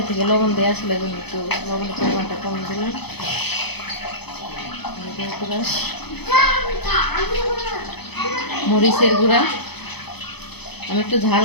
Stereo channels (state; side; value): late; right; 0.98 ms